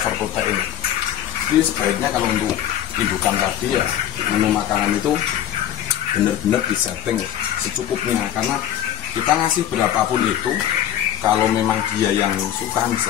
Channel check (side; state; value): right; quieter; 11.4 dB